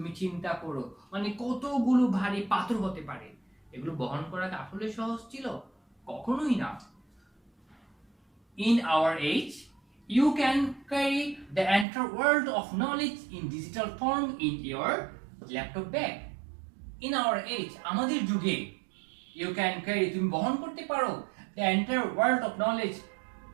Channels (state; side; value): drops out; left; at 11.9 s